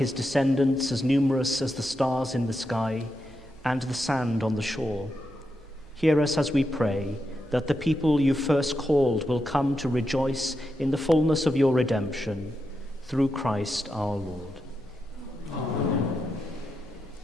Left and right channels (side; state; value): both; normal; correlation 0.86